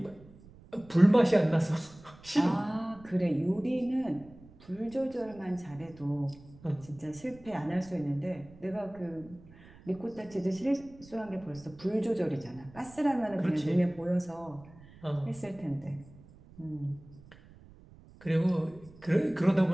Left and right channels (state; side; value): noise; right; rumble, 22 dB below the sound